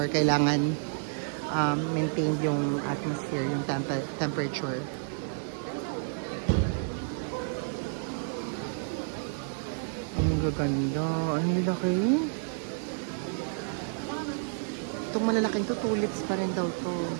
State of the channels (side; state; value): left; silent; digital silence